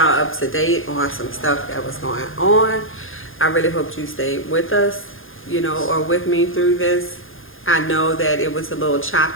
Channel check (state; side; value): late; right; 0.59 ms